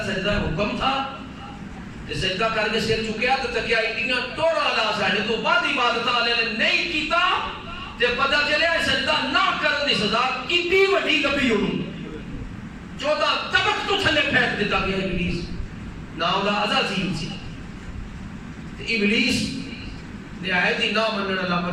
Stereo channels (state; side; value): identical; both; correlation 1.00